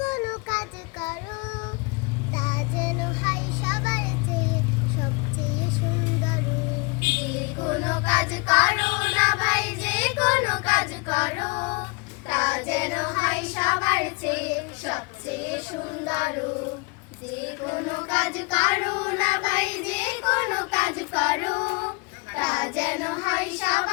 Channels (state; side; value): quieter; right; 29.7 dB